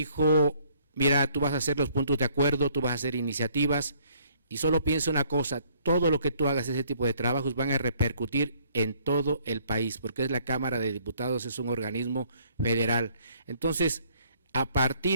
mira, tú vas a hacer los puntos de acuerdo, tú vas a hacer iniciativas, y solo piensa una cosa, todo lo que tú hagas, ese tipo de trabajos, van a repercutir en todo el país, porque es la Cámara de Diputados, es un organismo federal. Entonces, a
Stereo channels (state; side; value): inverted; both; correlation -0.62